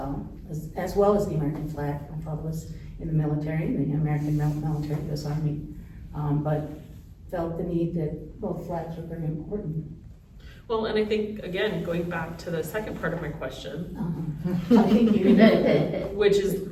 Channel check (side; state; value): both; identical; correlation 1.00